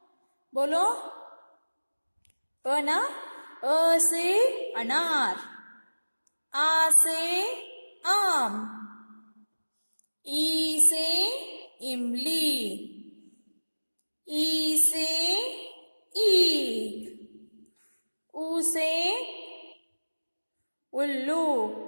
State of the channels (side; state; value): both; inverted; correlation -1.00